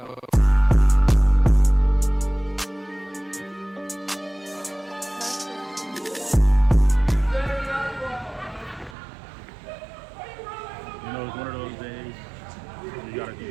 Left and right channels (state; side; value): drops out; left; at 9.0 s